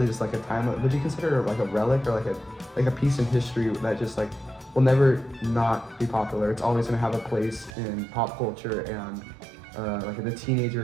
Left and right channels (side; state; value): left; drops out; at 7.7 s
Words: just like a time. Would you consider it like a relic or like a piece in history that just like will never not be popular? It's always gonna have a place in pop culture and like the teenager